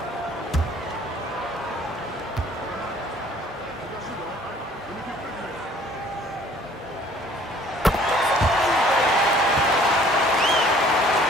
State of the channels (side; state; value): both; normal; correlation 0.55